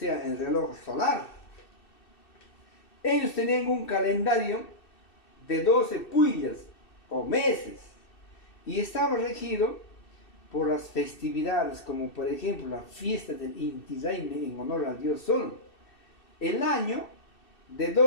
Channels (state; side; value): late; right; 2.6 ms